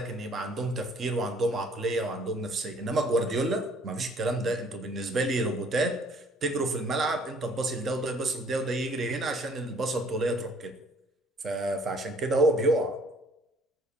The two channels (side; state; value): both; normal; correlation 0.58